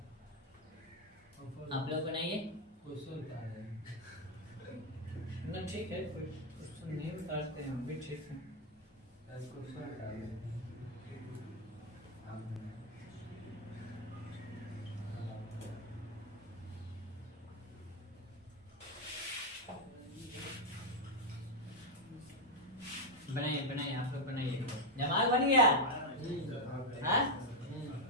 आप लोग बनाइए। ना ठीक है, कोई क्वेश्चन नहीं बताते हैं भी, ठीक है। बनाइए बनाइए, आप लोग बनाइए। जमाल बन गया? हाँ?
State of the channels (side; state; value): both; normal; correlation 0.04